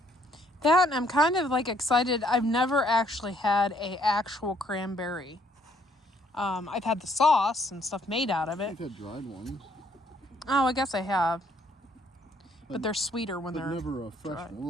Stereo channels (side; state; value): both; normal; correlation 0.66